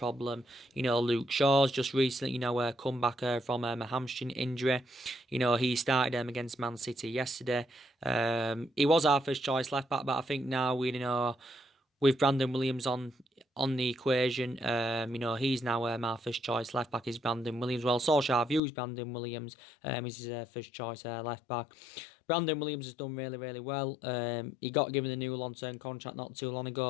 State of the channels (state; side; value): drops out; right; at 18.6 s